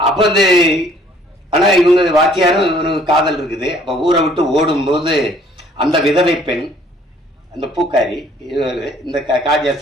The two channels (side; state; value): both; normal; correlation 0.59